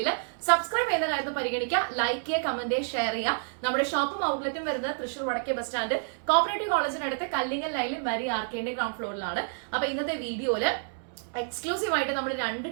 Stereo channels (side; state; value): left; silent; 59 dB below the other